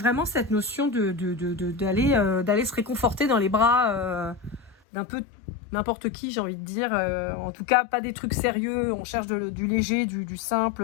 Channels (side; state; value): right; drops out; at 4.8 s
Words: cette notion d'aller se réconforter dans les bras d'un peu n'importe qui, j'ai envie de dire. En tout cas, pas des trucs sérieux. On cherche du léger, du simple.